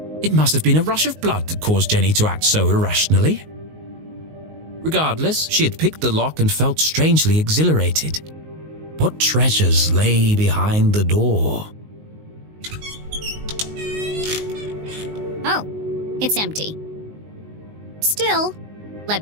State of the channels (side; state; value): left; late; 19 ms